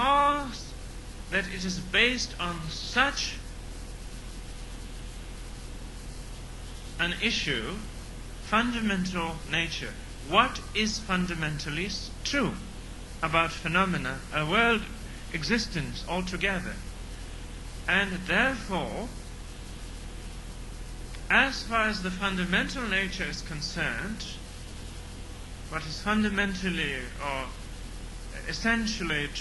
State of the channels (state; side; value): identical; both; correlation 1.00